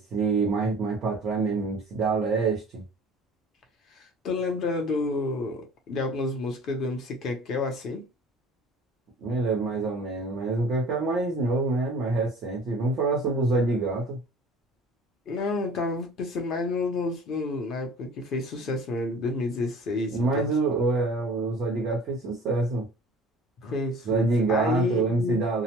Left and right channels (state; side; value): normal; both; correlation 0.46